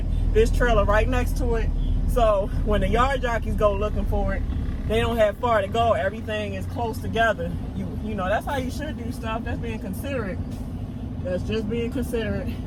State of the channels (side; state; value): both; identical; correlation 1.00